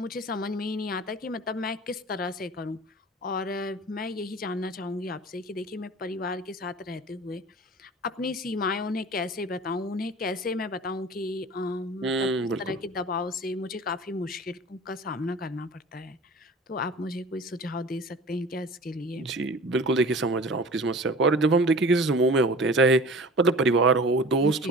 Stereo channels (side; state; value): both; normal; correlation 0.41